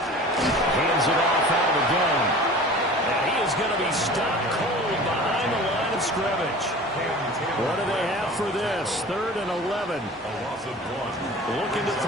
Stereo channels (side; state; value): both; normal; correlation 0.40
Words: Hands it off out of the gun. And he is going to be stopped cold behind the line of scrimmage. What do they have for this? 3rd and 11. A loss of 1. Looking to